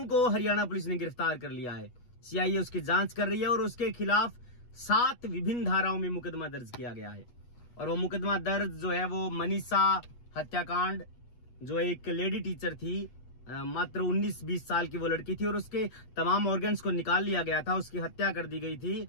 को हरियाणा पुलिस ने गिरफ्तार कर लिया है। सीआईए उसकी जांच कर रही है और उसके खिलाफ 7 विभिन्न धाराओं में मुकदमा दर्ज किया गया है। और वो मुकदमा दर्ज जो है वो मनीषा हत्याकांड, जो एक लेडी टीचर थी, मात्र 19-20 साल की वो लड़की थी और उसके तमाम ऑर्गन्स को निकाल लिया गया था, उसकी हत्या कर दी गई थी।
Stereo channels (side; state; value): right; late; 8.3 ms